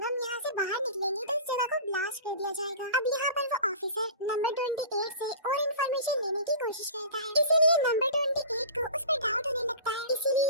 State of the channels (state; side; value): inverted; both; correlation -0.37